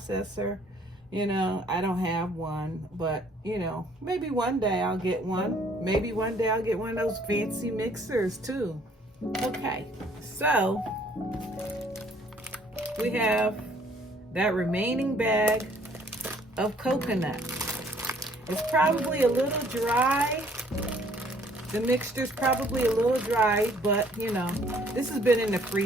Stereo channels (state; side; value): normal; both; correlation 0.61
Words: You know, I don't have one, but you know, maybe one day I'll get one. Maybe one day I'll get one of those fancy mixers too. Okay, so we have that remaining bag of coconut. It's probably a little dry. The mixture's probably a little dry, but you know, this has been in the